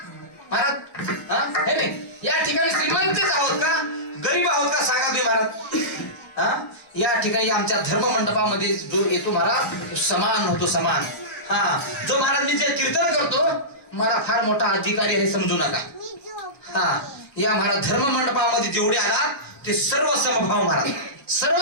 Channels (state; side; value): late; right; 1.2 ms